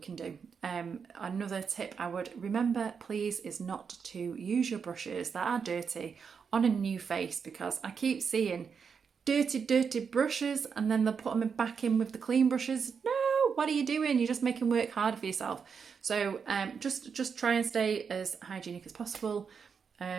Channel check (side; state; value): left; quieter; 6.2 dB